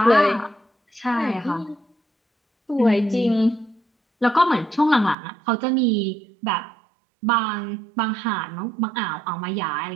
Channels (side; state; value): left; drops out; at 5.2 s